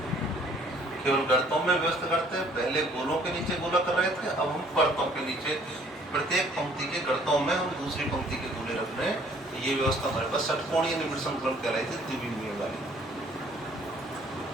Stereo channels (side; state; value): both; normal; correlation 0.59